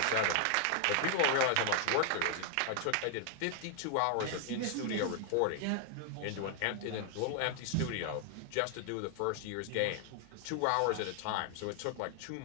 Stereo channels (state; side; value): different; both; correlation 0.00